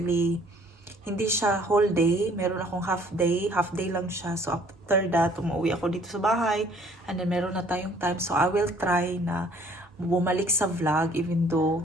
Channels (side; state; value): both; normal; correlation 0.58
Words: hindi siya whole day. Meron akong half day lang siya. So after that, umuwi ako dito sa bahay, and then meron na tayong time. So I will try na bumalik sa vlog, even